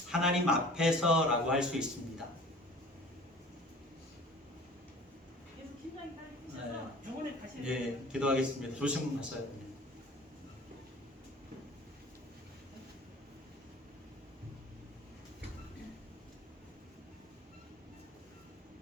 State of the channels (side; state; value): both; normal; correlation 0.44